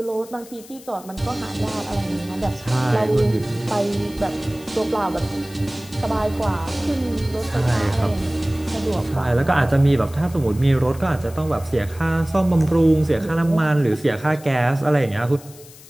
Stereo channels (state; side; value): noise; left; hiss, 21 dB below the sound